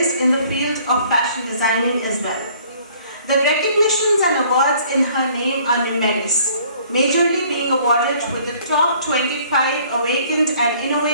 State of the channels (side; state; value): both; inverted; correlation -0.57